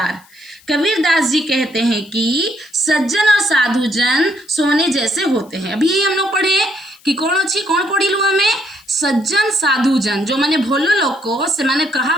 कबीरदास जी कहते हैं कि सज्जन और साधु जन सोने जैसे होते हैं। अभी हम लोग पढ़े कि कौन पढ़ी लू हमें, सज्जन साधु जन जो माने भोलो लोग को से माने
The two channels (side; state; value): left; noise; hiss, 28 dB below the sound